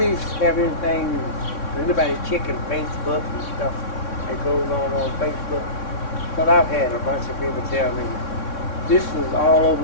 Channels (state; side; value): late; right; 3.6 ms